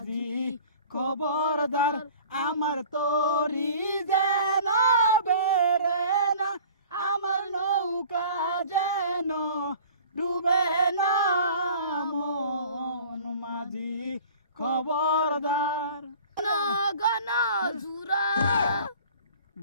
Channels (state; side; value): inverted; both; correlation -0.46